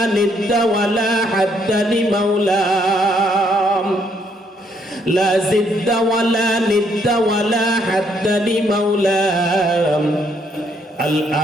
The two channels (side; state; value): both; normal; correlation 0.70